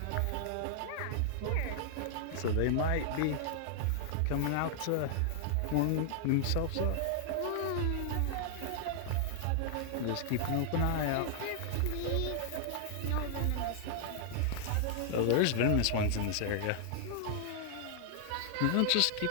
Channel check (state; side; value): different; both; correlation 0.00